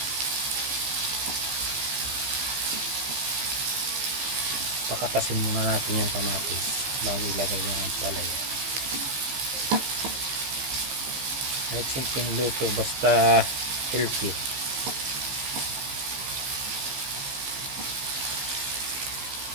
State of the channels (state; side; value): late; left; 15 ms